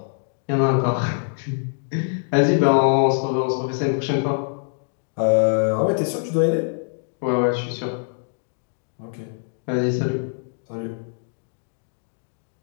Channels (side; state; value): right; silent; 63 dB below the other